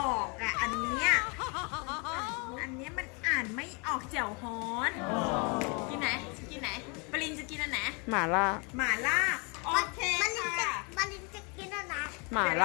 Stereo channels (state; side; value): quieter; right; 31.4 dB